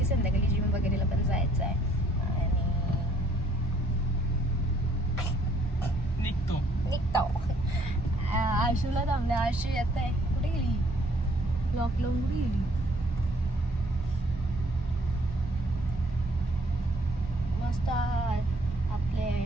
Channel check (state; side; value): normal; both; correlation 0.63